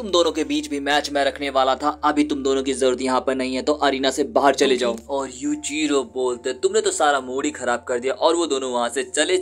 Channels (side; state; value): both; identical; correlation 1.00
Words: दोनों के बीच भी मैच मैं रखने वाला था, अभी तुम दोनों की जरूरत यहाँ पर नहीं है, तो अरीना से बाहर चले जाओ। और यूजिरो बोलते तुमने तो सारा मूड ही खराब कर दिया, और वो दोनों वहाँ से चले